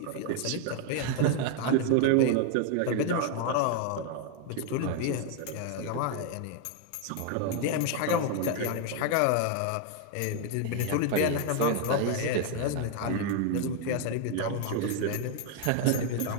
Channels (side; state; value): both; different; correlation 0.00